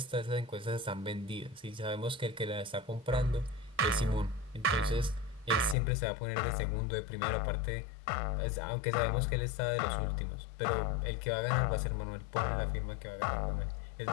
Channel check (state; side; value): drops out; right; at 5.8 s